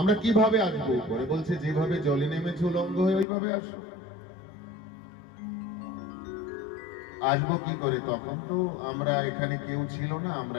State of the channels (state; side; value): drops out; right; at 3.2 s